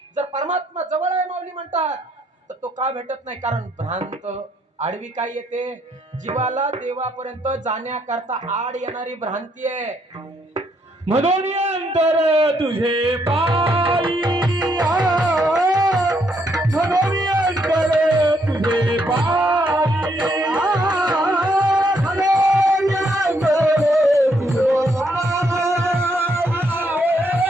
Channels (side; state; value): both; normal; correlation 0.73